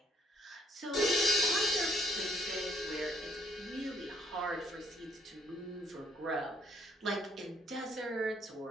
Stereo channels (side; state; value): both; normal; correlation 0.67